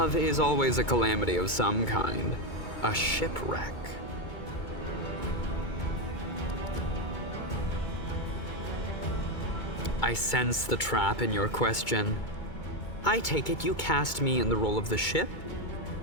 is always a calamity of some kind. A shipwreck. I sense the trap in your question. I take it you cast me in the role of the ship?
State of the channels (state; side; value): late; right; 2.2 ms